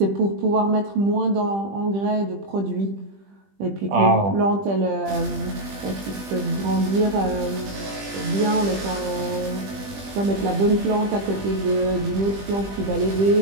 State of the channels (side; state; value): left; late; 20 ms